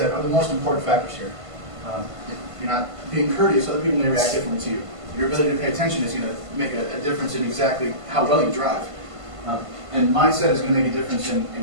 are the most important factors here. If you're not being courteous, other people may react differently to you. Your ability to pay attention is going to make a difference in exactly how well you drive. And mindset is going to make a difference in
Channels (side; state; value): left; late; 1.5 ms